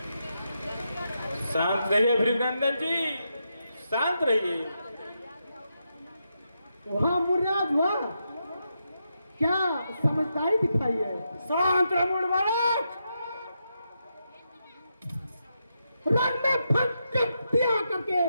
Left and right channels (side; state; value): both; inverted; correlation -0.84